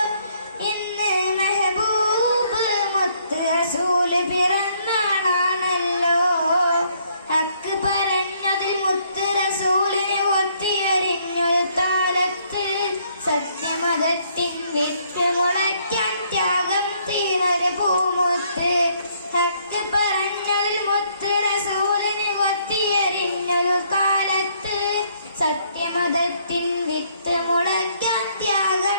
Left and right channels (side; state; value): both; inverted; correlation -0.67